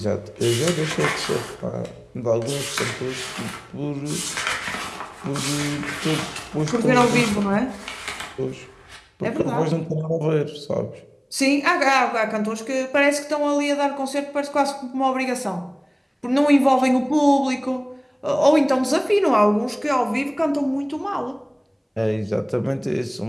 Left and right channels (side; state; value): both; identical; correlation 1.00